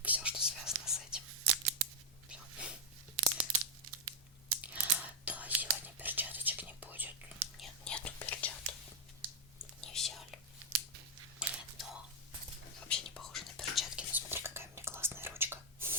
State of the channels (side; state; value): both; normal; correlation -0.03